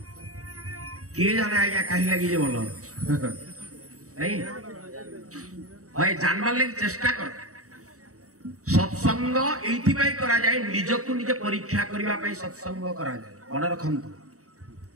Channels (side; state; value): left; late; 0.65 ms